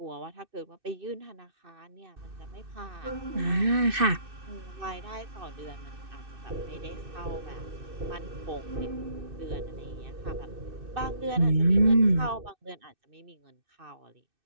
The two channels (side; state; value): left; late; 2.6 ms